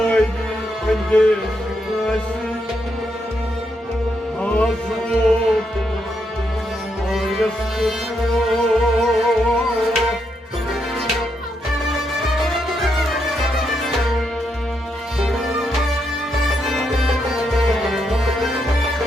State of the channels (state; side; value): normal; both; correlation 0.79